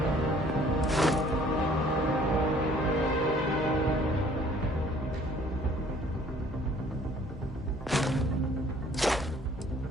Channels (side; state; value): both; normal; correlation 0.56